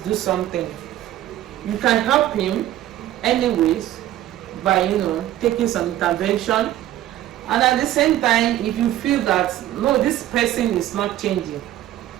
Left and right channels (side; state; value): left; quieter; 13.6 dB